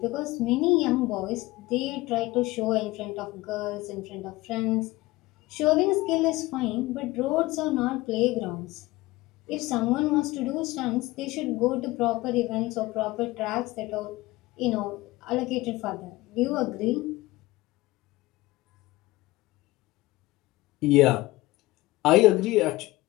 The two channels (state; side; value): quieter; right; 19.5 dB